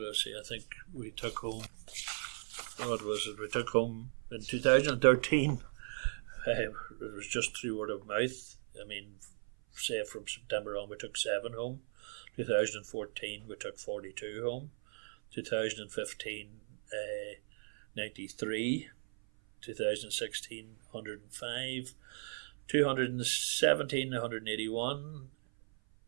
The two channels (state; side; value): silent; left; 53 dB below the other